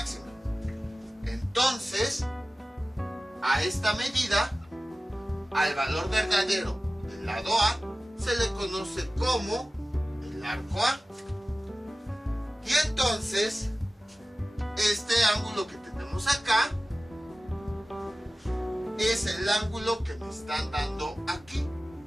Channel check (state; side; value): normal; both; correlation 0.96